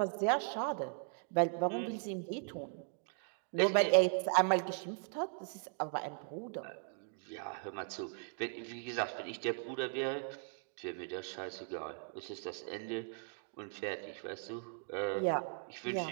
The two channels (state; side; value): silent; left; 52 dB below the other